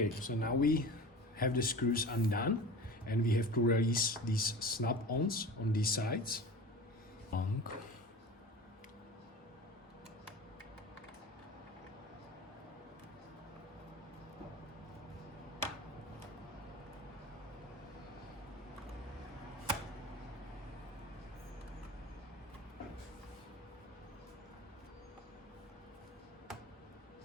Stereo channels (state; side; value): normal; both; correlation 0.35